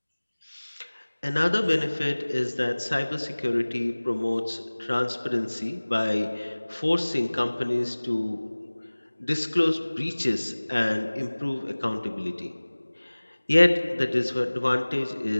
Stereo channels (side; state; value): both; inverted; correlation -1.00